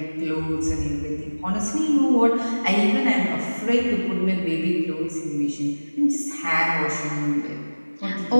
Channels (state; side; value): inverted; both; correlation -1.00